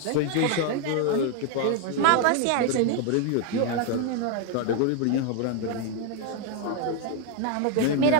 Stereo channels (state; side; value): different; both; correlation 0.01